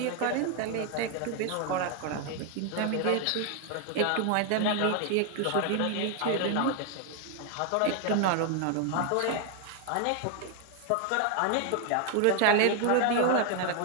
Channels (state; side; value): different; both; correlation 0.00